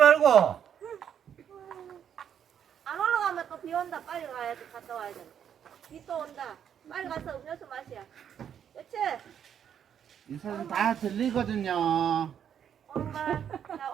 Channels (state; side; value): quieter; left; 8.8 dB